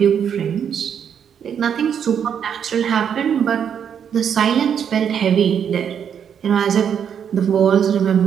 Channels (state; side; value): quieter; left; 8.1 dB